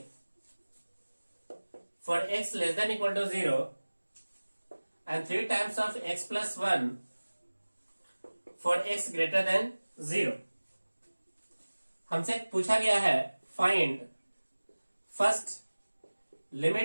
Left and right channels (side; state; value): both; inverted; correlation -1.00